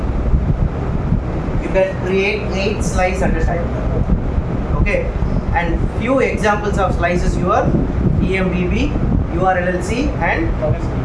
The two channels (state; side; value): identical; both; correlation 1.00